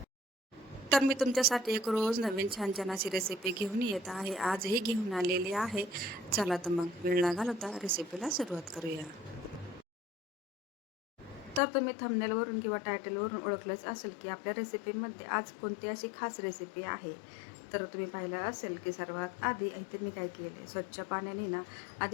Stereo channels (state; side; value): drops out; right; at 11.6 s